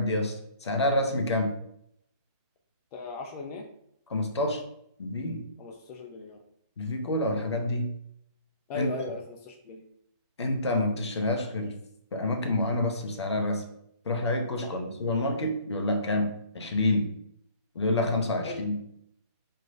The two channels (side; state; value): both; inverted; correlation -0.53